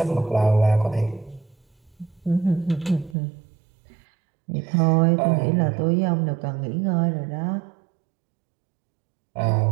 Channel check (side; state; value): left; drops out; at 3.2 s